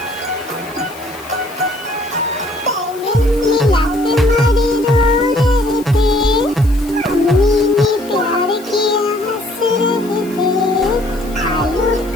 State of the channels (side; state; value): left; noise; hiss, 21 dB below the sound